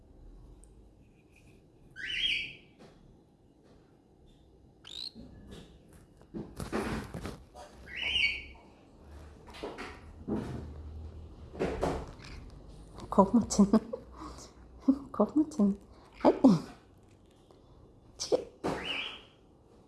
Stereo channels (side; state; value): both; identical; correlation 1.00